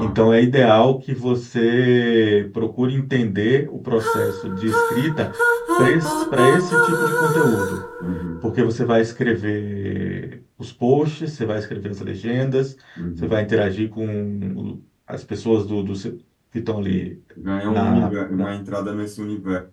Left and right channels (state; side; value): identical; both; correlation 1.00